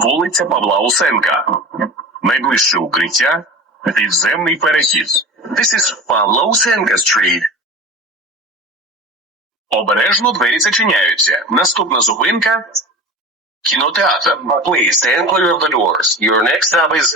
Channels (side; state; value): both; normal; correlation 0.34